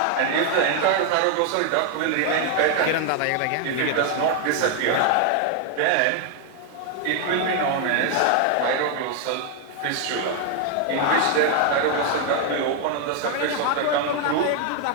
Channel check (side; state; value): both; different; correlation 0.00